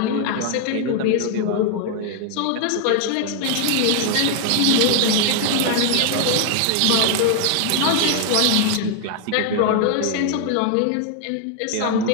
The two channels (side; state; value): both; different; correlation 0.00